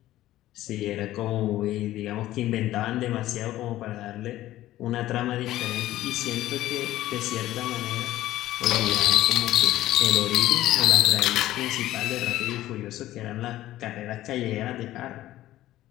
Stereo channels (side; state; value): right; quieter; 14.8 dB